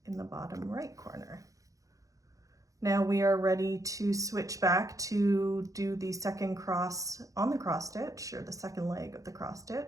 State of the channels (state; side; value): late; left; 0.16 ms